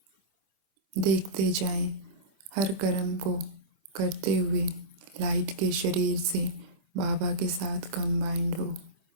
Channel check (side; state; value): left; late; 25 ms